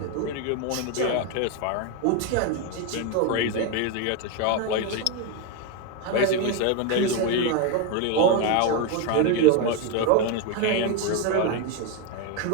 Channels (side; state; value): both; different; correlation 0.02